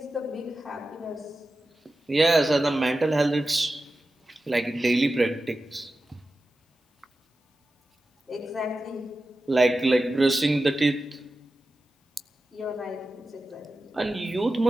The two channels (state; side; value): normal; both; correlation 0.93